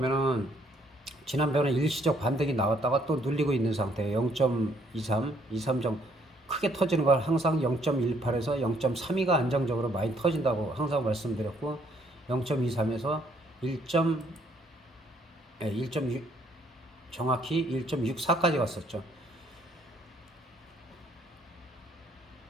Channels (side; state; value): both; normal; correlation 0.66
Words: 지난번에 일시적 반등이 나왔다가 또 눌리고 있는 상태예요. 0.23점 크게 터지는 걸 항상 0.18에서 0.32가 안정적으로 많이 터진다고 항상 말씀드렸고 0.23에서 1.6 정확히 1.64까지 갔었죠.